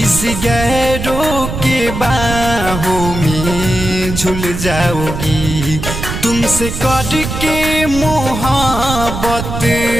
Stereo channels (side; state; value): right; noise; rumble, 6 dB below the sound